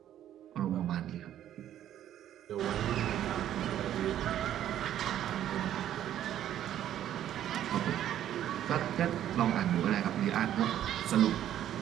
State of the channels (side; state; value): left; quieter; 11.4 dB